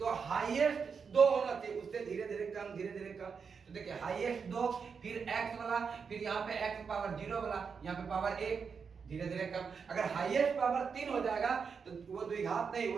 हाईएस्ट 2 होना चाहिए, उससे धीरे धीरे कम। तो देखिए हाईएस्ट 2, फिर x वाला, फिर यहाँ पे x पावर 0 वाला, यहाँ पे पावर 1, धीरे धीरे कम। अगर हाईएस्ट पावर 3 हो जाएगा तो वो द्विघात नहीं,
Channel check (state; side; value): quieter; left; 5.9 dB